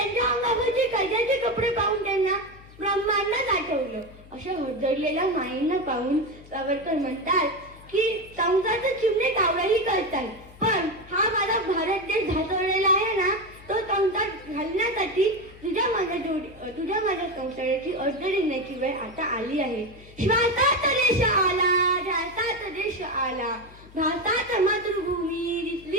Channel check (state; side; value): noise; left; hum, 21 dB below the sound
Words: अंगावरचे कैद्याचे कपडे पाहून त्यांना ब्रह्मांडच आठवलं. अशा हदरलेल्या माईंना पाहून सावरकर म्हणतात की संसारचे चिमणे कावळाही करतात, पण हा माझा भारत देश धासळलेला आहे ना, तो संसार घालण्यासाठी तुझ्या माझ्या संसाराची अर्ध देण्याची वेळ आता आली आहे. श्वासात देश आला, ध्यासात देश आला, भासात मातृभूमी